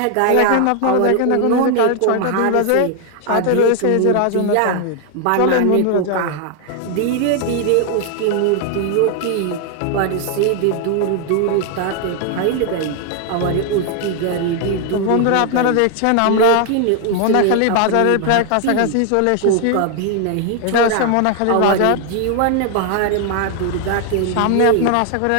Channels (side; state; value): both; different; correlation 0.00